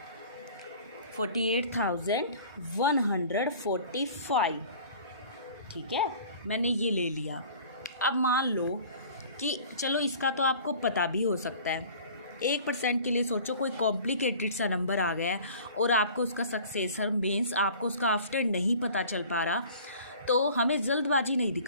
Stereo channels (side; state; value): both; inverted; correlation -0.46